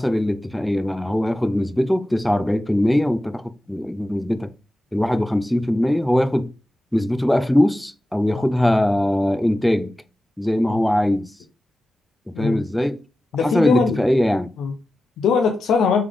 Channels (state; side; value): normal; both; correlation 0.93